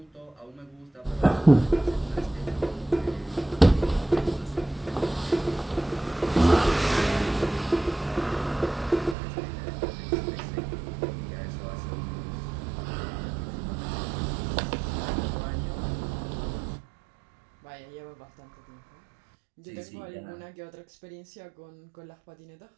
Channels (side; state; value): left; drops out; at 9.2 s